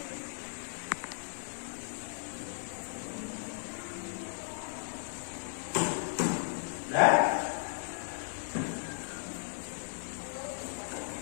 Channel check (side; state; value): right; silent; digital silence